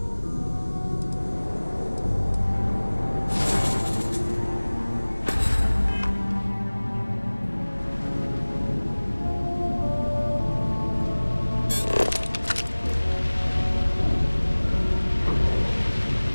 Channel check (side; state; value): both; inverted; correlation -1.00